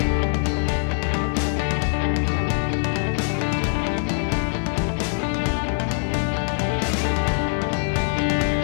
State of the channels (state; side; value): silent; right; digital silence